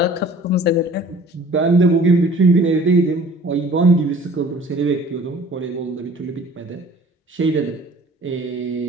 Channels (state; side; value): normal; both; correlation 0.49